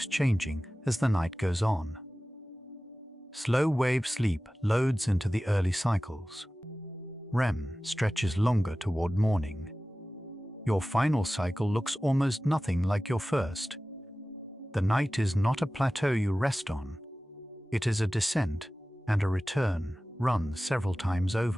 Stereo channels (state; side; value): normal; both; correlation 0.96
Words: changing as the night goes on. Slow wave sleep loads into the early cycles. REM stretches longer toward morning. Your final cycle looks almost nothing like your first. The night is not a plateau you rest on. It is a descent and a return run several times